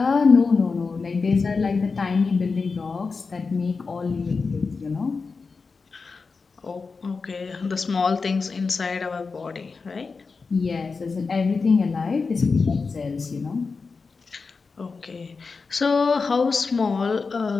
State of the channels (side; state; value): right; quieter; 4.6 dB